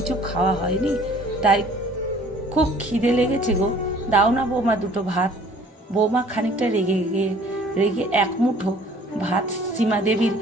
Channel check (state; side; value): normal; both; correlation 0.53